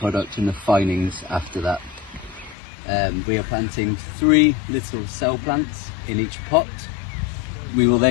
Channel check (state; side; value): drops out; right; at 2.6 s